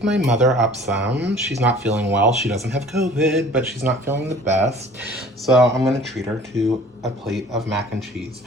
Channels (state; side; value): normal; both; correlation 0.49